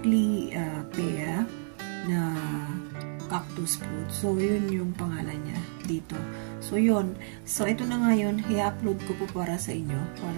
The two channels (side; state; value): left; silent; digital silence